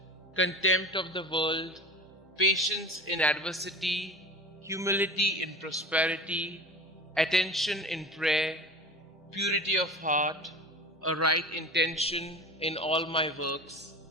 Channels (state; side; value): normal; both; correlation 0.34